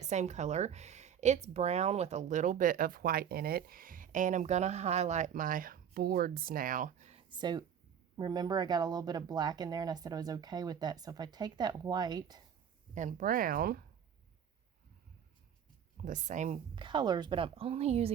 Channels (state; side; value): quieter; left; 8.5 dB